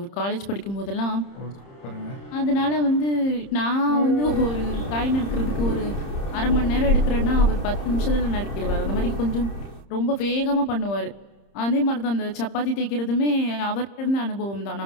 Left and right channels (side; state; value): right; late; 30 ms